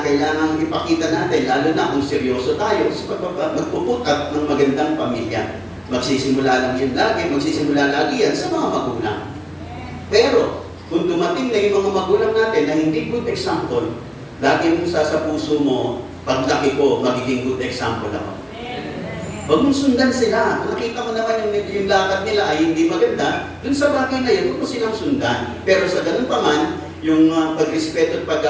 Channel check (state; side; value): identical; both; correlation 1.00